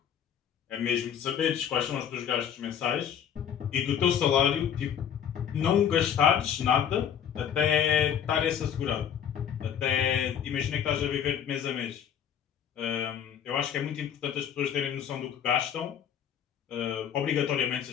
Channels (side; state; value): right; quieter; 8.8 dB